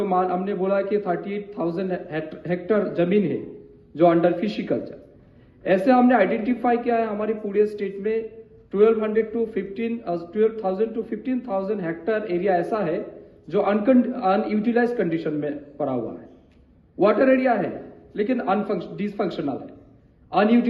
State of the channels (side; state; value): both; identical; correlation 1.00